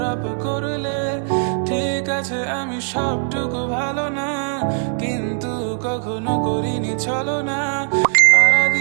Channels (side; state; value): left; silent; digital silence